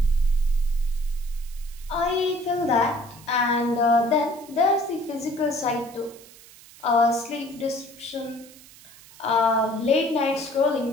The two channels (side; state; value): right; noise; hiss, 22 dB below the sound